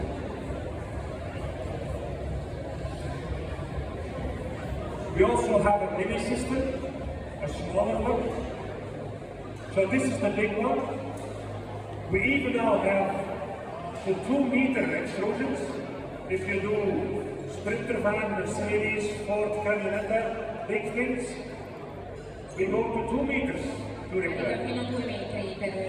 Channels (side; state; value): both; identical; correlation 1.00